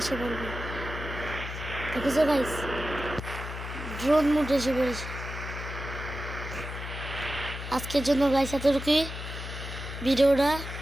বলবে। দেখেছো গাইস, ড্রোন মোড এসে পড়েছে। আজকের জন্য গাইস এতটুকুই ভিডিওটা।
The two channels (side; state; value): left; noise; hum, 8 dB below the sound